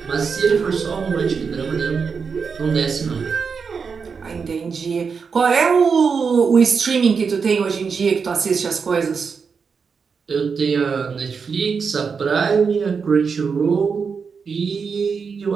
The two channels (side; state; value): left; quieter; 5.7 dB